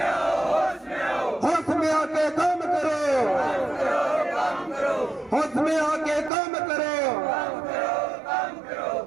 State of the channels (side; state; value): left; drops out; at 6.3 s